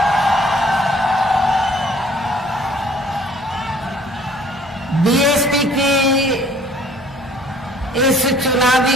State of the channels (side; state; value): both; normal; correlation 0.56